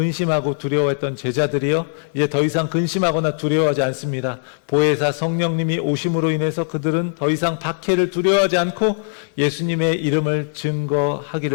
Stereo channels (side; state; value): right; silent; digital silence